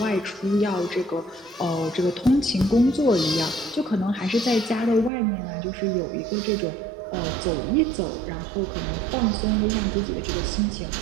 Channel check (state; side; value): drops out; left; at 5.1 s